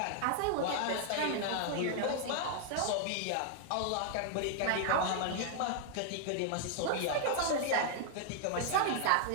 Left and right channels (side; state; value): both; different; correlation 0.00